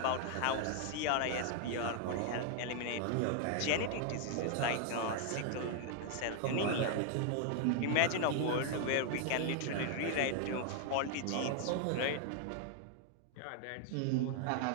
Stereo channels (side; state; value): both; different; correlation 0.00